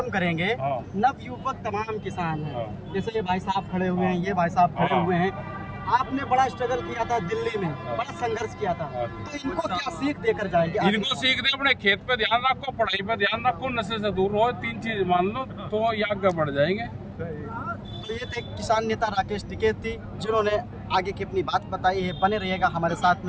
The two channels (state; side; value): identical; both; correlation 1.00